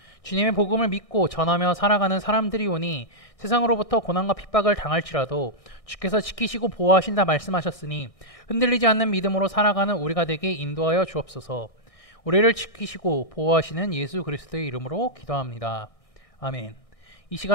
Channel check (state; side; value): late; right; 1.6 ms